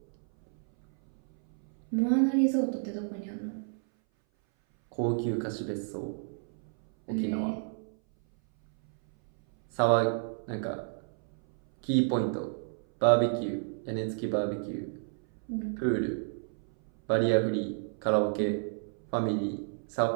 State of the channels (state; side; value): silent; left; 57 dB below the other